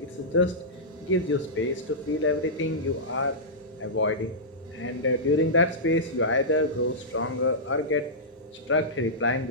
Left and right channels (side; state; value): both; normal; correlation -0.13